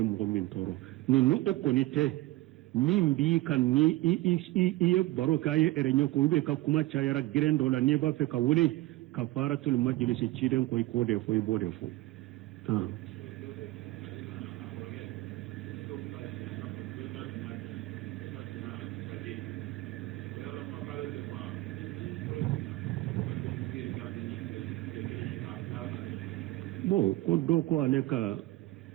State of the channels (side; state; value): left; quieter; 17.9 dB